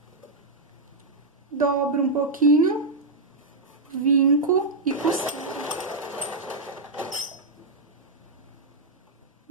Dobro um pouquinho, vinco e costuro.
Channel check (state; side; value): quieter; left; 3.1 dB